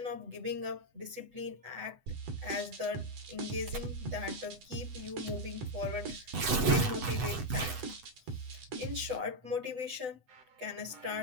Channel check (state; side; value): late; left; 8.0 ms